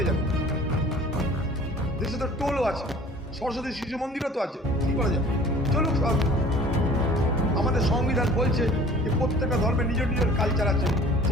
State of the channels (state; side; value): normal; both; correlation 0.48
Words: যাবো? দেশে তো টোলও আছে, সরস্বতী শিশু মন্দিরও তো আছে, কী করা যাবে? চলুক সব। আমাদের সংবিধান বলছে যে প্রত্যেকটা ধর্মের নিজের নিজের কালচার আছে,